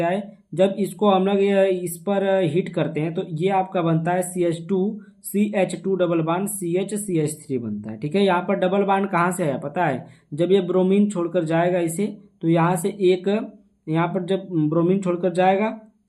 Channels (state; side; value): identical; both; correlation 1.00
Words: है। जब इसको हम लोग इस पर हीट करते हैं तो ये आपका बनता है CH2 डबल बॉन्ड CH3 बनता है। ठीक है, यहाँ पर डबल बॉन्ड कहाँ से है पता है? जब ये ब्रोमीन छोड़कर जाएगा इसे, तो यहाँ से एक, यहाँ पर जब ब्रोमीन छोड़कर